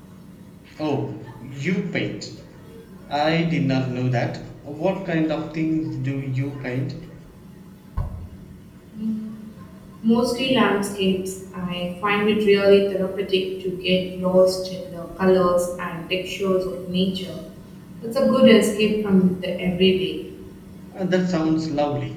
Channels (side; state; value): both; identical; correlation 1.00